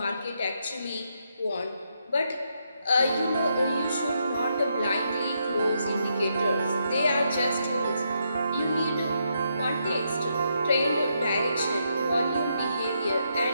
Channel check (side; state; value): both; inverted; correlation -0.79